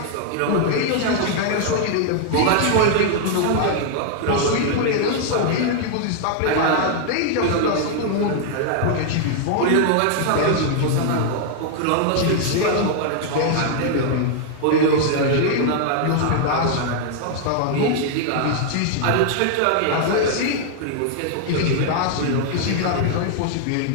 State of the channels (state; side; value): different; both; correlation 0.00